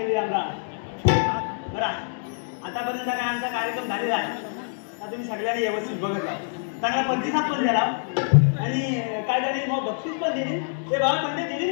रामराम बरं आतापर्यंत काय आमचा कार्यक्रम झालेला आहे आता तुम्ही सगळ्यांनी व्यवस्थित बघितला चांगला प्रतिसाद पण दिला आणि काय झाले मग बक्षीस पण दिली ते बाबा म्हणजे दिली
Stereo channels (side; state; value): right; silent; digital silence